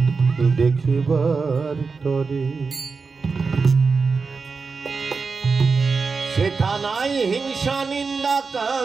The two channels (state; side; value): quieter; left; 4.7 dB